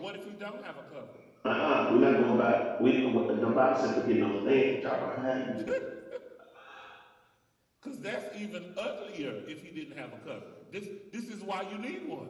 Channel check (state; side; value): identical; both; correlation 1.00